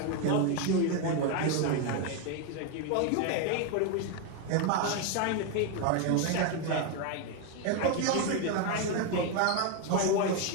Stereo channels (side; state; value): both; different; correlation 0.01